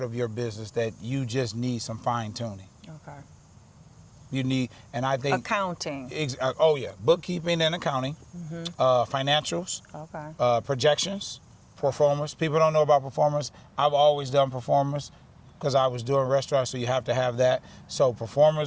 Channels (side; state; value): both; identical; correlation 1.00